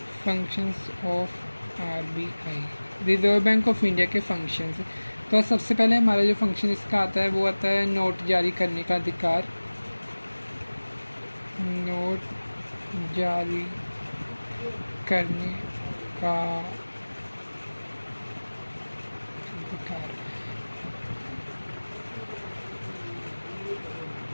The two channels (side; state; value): both; inverted; correlation -1.00